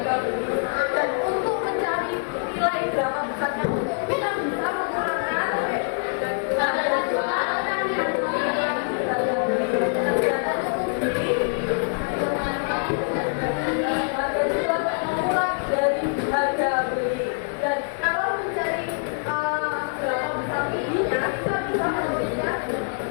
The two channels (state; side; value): silent; right; 62 dB below the other